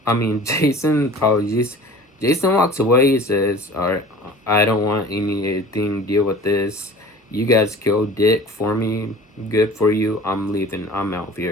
Jason, apologies. Jason walks away. He says, alright, I don't want anything to deal with this. You guys killed Dick for me. Good for you. I'm leaving. I'm out of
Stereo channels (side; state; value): both; normal; correlation 0.43